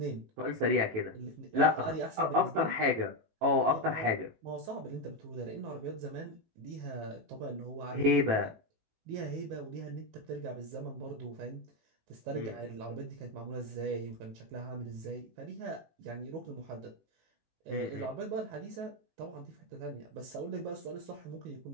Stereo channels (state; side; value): late; left; 18 ms